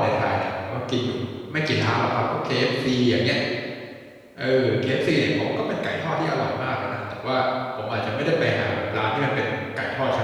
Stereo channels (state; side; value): identical; both; correlation 1.00